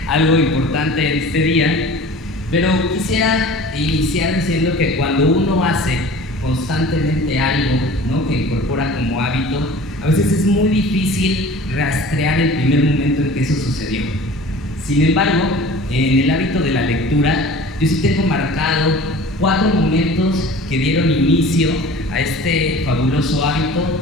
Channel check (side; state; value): both; normal; correlation 0.42